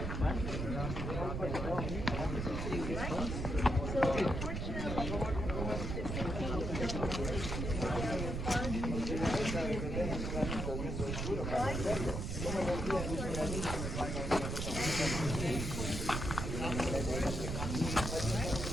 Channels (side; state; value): right; noise; rumble, 3 dB below the sound